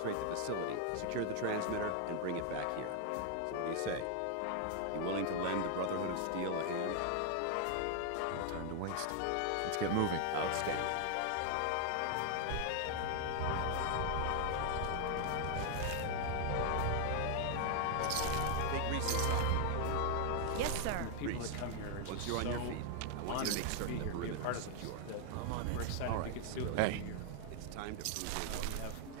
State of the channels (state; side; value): different; both; correlation 0.00